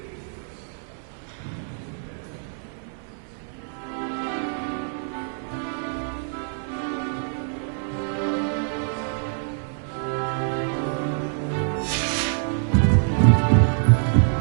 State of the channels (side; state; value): left; silent; digital silence